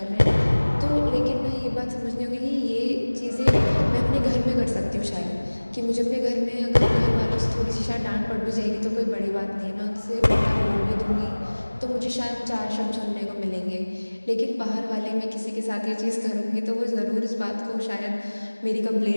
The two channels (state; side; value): inverted; both; correlation -1.00